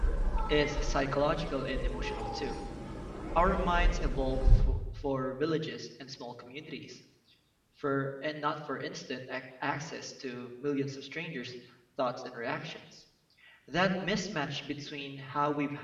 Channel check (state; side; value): identical; both; correlation 1.00